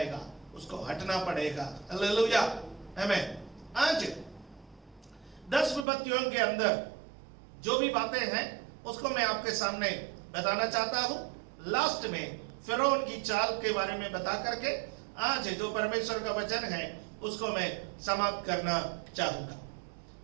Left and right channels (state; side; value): drops out; left; at 5.9 s